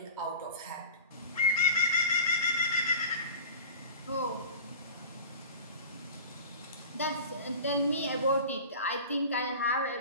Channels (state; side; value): inverted; both; correlation -0.35